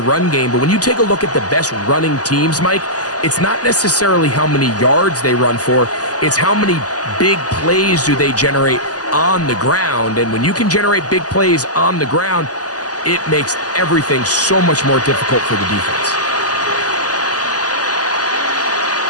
game, but when you take a look at the best running teams, Mike, it's not necessarily how many yards they run for, it's how many big plays do they generate on the ground. And when you can generate big plays on the ground, it makes everything so much more difficult for the defense.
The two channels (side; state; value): right; late; 0.67 ms